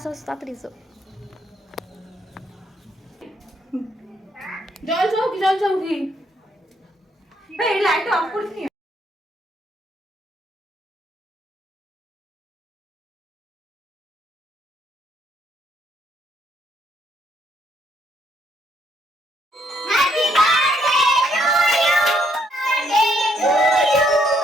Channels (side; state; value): both; normal; correlation 0.71